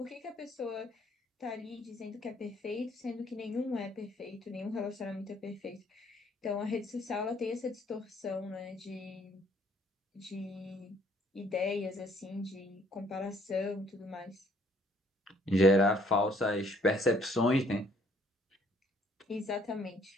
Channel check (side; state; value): both; normal; correlation 0.64